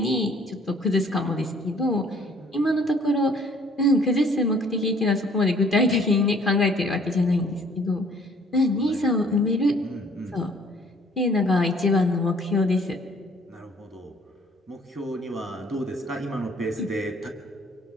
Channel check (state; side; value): normal; both; correlation 0.58